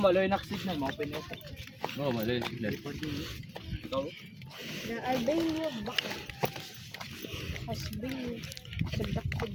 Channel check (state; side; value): identical; both; correlation 1.00